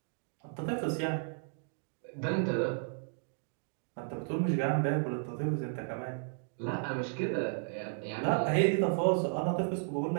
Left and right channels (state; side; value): silent; left; 55 dB below the other